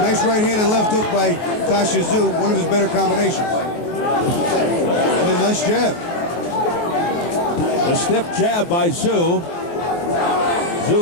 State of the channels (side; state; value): right; late; 23 ms